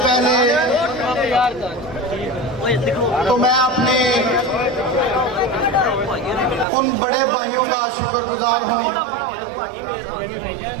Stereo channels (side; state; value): left; drops out; at 6.7 s